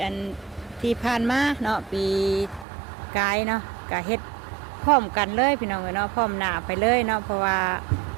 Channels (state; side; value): drops out; left; at 2.7 s